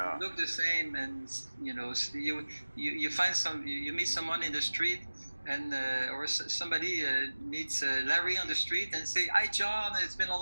Look the same, and you find you meet someone in the street, and or somebody meets Larry on the street and say, "Hi, John. It's been a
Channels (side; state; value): both; inverted; correlation -1.00